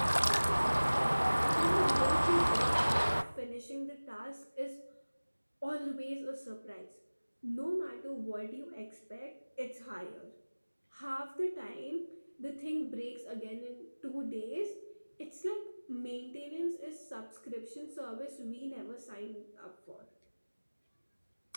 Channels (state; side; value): inverted; both; correlation -1.00